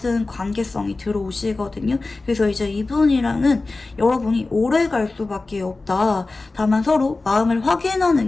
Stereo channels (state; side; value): quieter; right; 3.4 dB